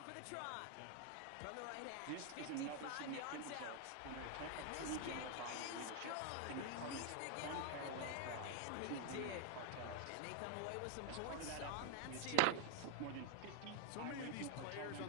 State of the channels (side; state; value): both; different; correlation 0.01